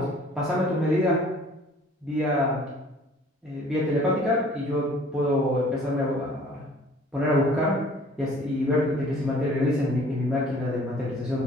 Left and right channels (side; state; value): both; normal; correlation 0.53